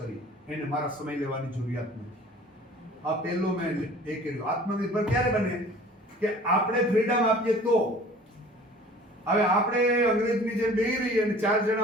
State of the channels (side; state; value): both; normal; correlation 0.47